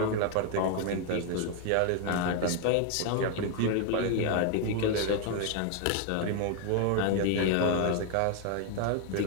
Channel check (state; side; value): different; both; correlation 0.01